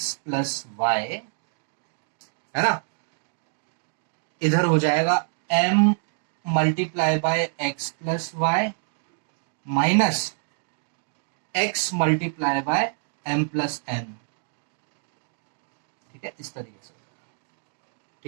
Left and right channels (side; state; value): left; silent; digital silence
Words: plus y, है ना, इधर हो जाएगा m multiply by x plus y minus x multiply by m plus n, ठीक है, इस तरीके से,